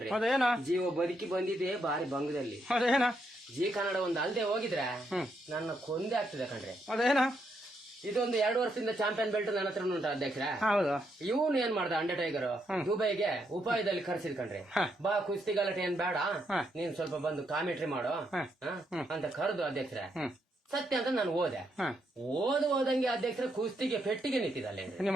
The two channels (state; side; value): normal; both; correlation 0.78